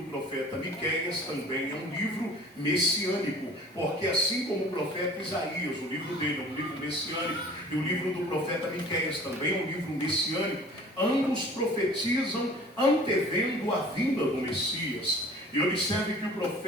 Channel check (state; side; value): normal; both; correlation 0.46